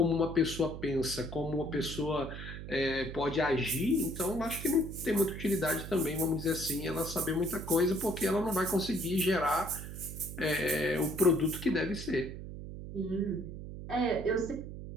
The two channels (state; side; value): noise; right; hum, 9 dB below the sound